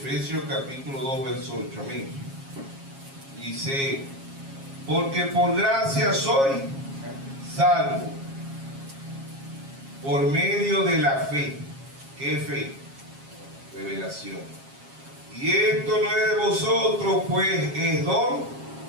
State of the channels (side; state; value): left; late; 7.4 ms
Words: capítulo 2, verso 8. Amén. Dice: porque por gracia soy salvo por medio de la fe. ¿Qué fe? Revelación. Y esto no es de vosotros, pues es don